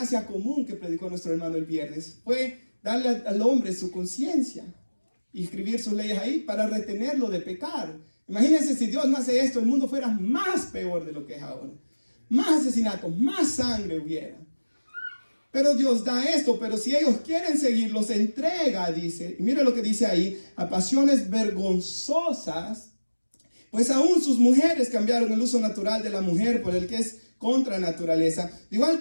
común que predicó nuestro hermano el viernes fue darle al hombre su conciencia y escribir sus leyes ahí para retenerlo de pecar. Imagínense si Dios no hace esto, el mundo fuera más peor de lo que es ahora. Más asesinatos, más sangre hubiera. Pero Dios da esto, pero si ellos quieren seguir, los entrega, dice. Y mire lo que dice ahí, a pasiones vergonzosas, pues aún sus mujeres cambiaron el uso natural de la mujer por el que es contra naturaleza. De igual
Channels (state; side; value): inverted; both; correlation -1.00